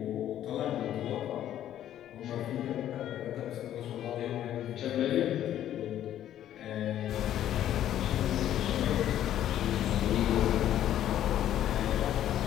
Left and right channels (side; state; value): right; quieter; 11.5 dB